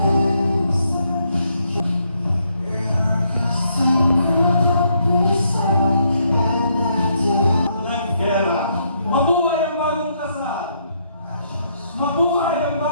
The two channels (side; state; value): both; inverted; correlation -0.74